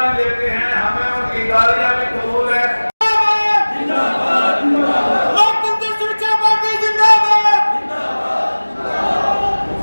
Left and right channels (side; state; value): both; inverted; correlation -1.00